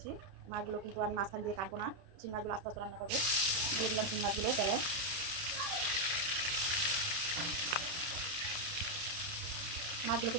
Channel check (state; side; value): late; left; 31 ms